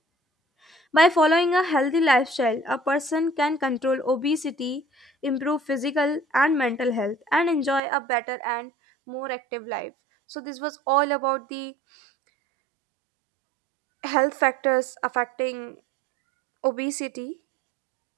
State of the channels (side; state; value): left; drops out; at 7.8 s